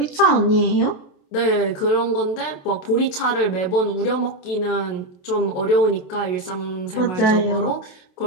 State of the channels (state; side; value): late; right; 27 ms